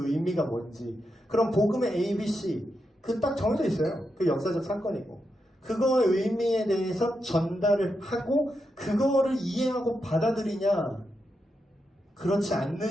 의미가 뭔지, 그런 복음의 ABC, 그 딱 정해져 있어요. 그 역사적 사건이고. 그거의 의미에 대해서 전달을 하고, 그거를 이해하고 받아들이냐, 그렇지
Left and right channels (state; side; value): normal; both; correlation 0.85